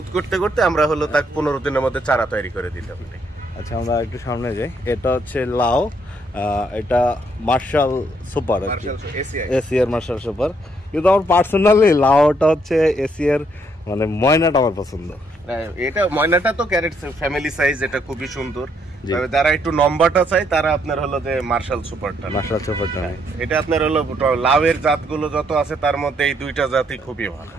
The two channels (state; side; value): normal; both; correlation 0.72